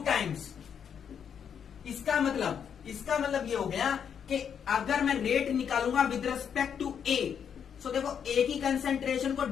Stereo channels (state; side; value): quieter; right; 7.8 dB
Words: टाइम्स. इसका मतलब ये हो गया कि अगर मैं रेट निकालूंगा विद रिस्पेक्ट टू A, सो देखो A की कंसंट्रेशन को